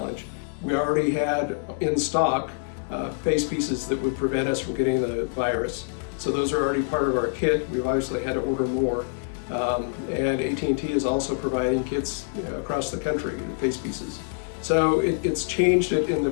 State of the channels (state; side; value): silent; right; digital silence